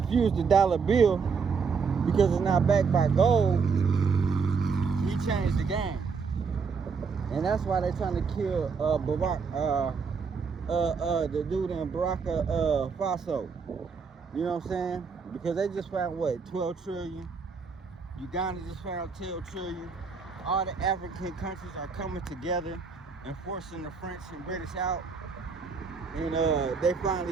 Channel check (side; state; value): left; quieter; 5.4 dB